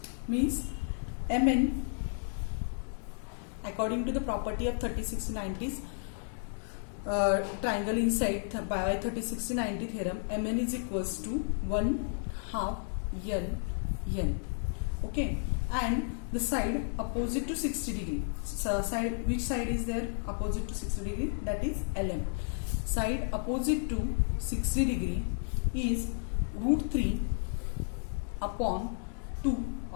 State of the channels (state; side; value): silent; right; digital silence